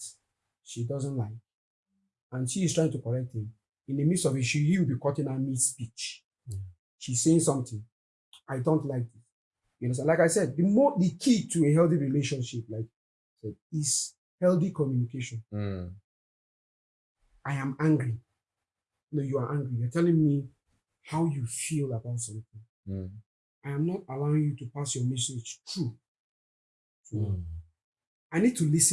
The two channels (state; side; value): identical; both; correlation 1.00